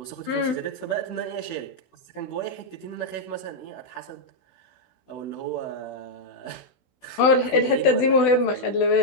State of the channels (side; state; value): right; late; 16 ms